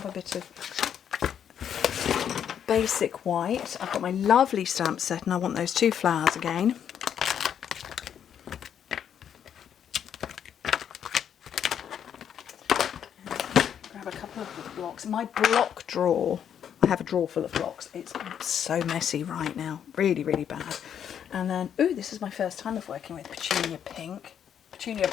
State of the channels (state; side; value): quieter; right; 8.8 dB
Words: a bit of basic white. I've got my lovely stamp set and I want those 2 flowers again. Grab a couple of the blocks. My block drawer, I have a drawer full of blocks. It's so messy right now, really, really bad. And then, ooh, this is my first time of working with Petunia Pink. Petunia